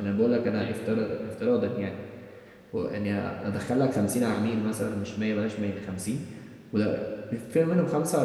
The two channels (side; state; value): both; identical; correlation 1.00